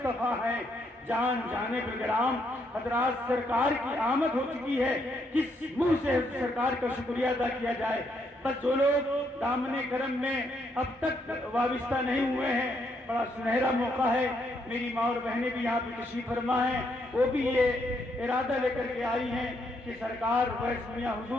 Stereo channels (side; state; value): both; normal; correlation 0.75